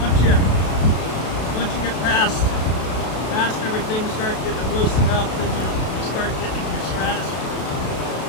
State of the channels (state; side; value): late; right; 32 ms